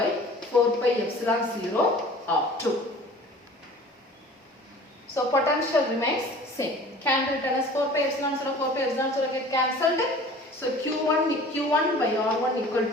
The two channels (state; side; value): normal; both; correlation 0.45